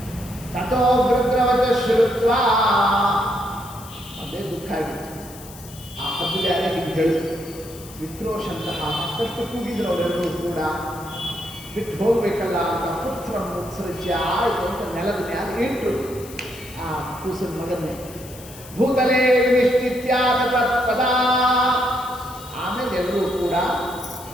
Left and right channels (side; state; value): left; noise; hiss, 18 dB below the sound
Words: ತಥೋ ಗೃಧ್ರವಚ ಶ್ರುತ್ವ. ಅದೇ ದುಃಖ ಆಗಿತ್ತು. ಆ ಹದ್ದು ಯಾರೇ ಹೀಗೆ ಹೇಳಿತು. ವಿಕ್ರೋಶಂತಹ ಮತ್ತಷ್ಟು ಕೂಗಿದ್ರು ಅವರೆಲ್ಲರೂ ಕೂಡ. ಬಿಟ್ಟು ಹೋಗ್ಬೇಕಲ್ಲ ಅಂತ ಪುತ್ರ ಮುತ್ಸೃಜ್ಯ ಆಯಿತು ಅಂತ ನೆಲದ ಮ್ಯಾಲ ಇಟ್ಟು ಆ ಕೂಸಿನ ಮಗನ್ನೇ ಭೂತಲೇ ವಿನಿಶ್ಚಿತ್ಯಾದ ಪದ. ಆಮೇಲೆ ಎಲ್ಲರೂ ಕೂಡ